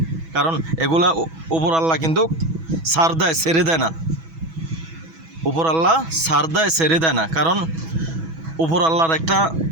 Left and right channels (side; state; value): left; late; 6.1 ms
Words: কারণ এগুলা উপর আল্লাহ কিন্তু ছাড় দেয়, ছেড়ে দেয় না। উপর আল্লাহ ছাড় দেয়, ছেড়ে দেয় না। কারণ উপর আল্লাহর একটা